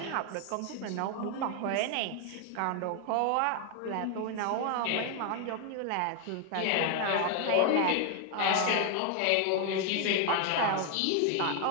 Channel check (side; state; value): both; different; correlation 0.01